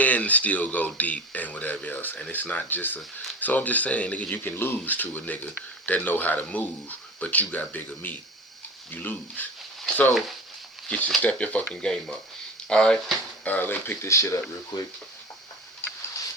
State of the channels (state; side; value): normal; both; correlation 0.33